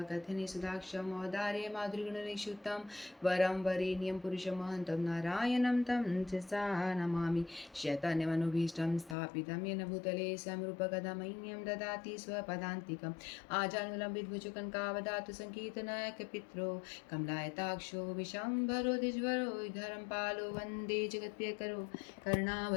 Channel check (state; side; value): drops out; right; at 9.2 s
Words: सुधाक्षं औदार्य माधुर्यगुणनिक्षुतं वरं वरेण्यं पुरुषमहन्तं नारायणं तं सा नमामि। शैतान्यमनुभीष्टं स्थापितं येन भूतले समरूपकदमह्यं ददाति स्वपदान्तिकम् आजानुलम्बितभुजकङ्कावदातु सङ्कीर्तनायकपित्रो कमलायताक्षो विशम्भरो द्विजवरो धरं पालो वन्दे जगत्प्रियकरो